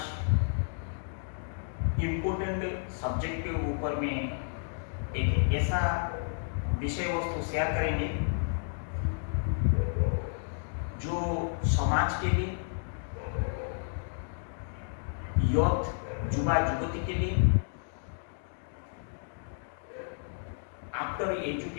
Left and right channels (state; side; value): silent; right; digital silence